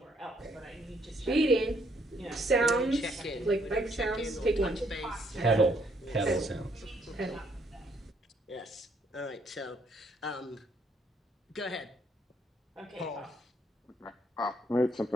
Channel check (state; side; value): normal; both; correlation 0.69